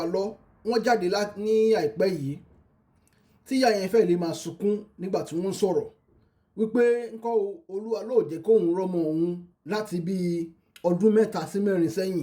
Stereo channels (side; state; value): both; identical; correlation 1.00